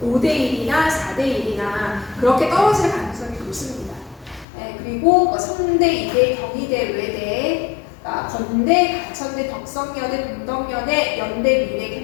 5대1이나 4대1이나 그렇게 떨어질 가능성이 높습니다. 네, 그리고 성대, 이대, 경희대, 외대, 건대, 가천대, 덕성여대, 동덕여대, 연대, 미래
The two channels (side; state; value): right; drops out; at 4.5 s